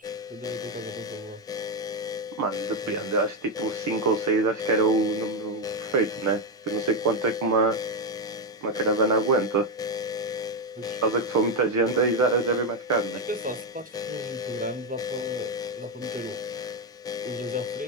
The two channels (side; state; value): both; normal; correlation 0.07